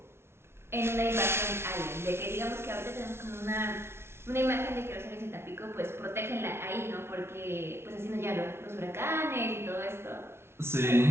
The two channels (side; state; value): left; late; 0.12 ms